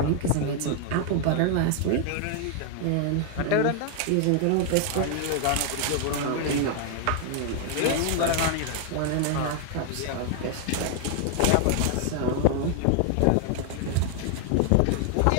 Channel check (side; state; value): both; different; correlation 0.00